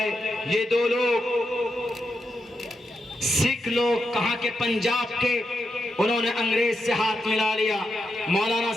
یہ دو لوگ سکھ لوگ کہاں کے پنجاب کے، انہوں نے انگریز سے ہاتھ ملا لیا. مولانا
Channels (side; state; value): both; normal; correlation 0.85